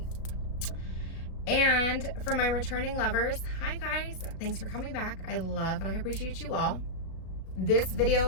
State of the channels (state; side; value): late; right; 36 ms